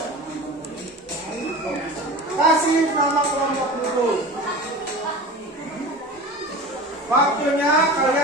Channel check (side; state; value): both; normal; correlation 0.34